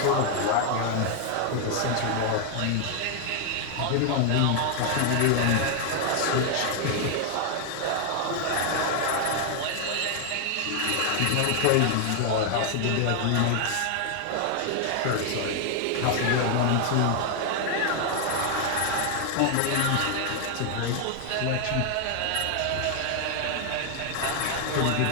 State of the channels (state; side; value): different; both; correlation 0.00